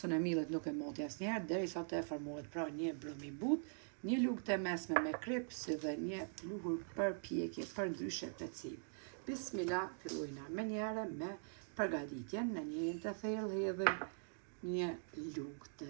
e millit nuk e moti asnjëherë derisa të formohet pra një brum i butë, një lugë të mesme me krip, si dhe një pluhur përpjekje për ndryshe peciv. Bismillah, fillojna menjëherë me përgatitjen. Në njërin të thellë hedhim një lugë të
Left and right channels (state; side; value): silent; left; digital silence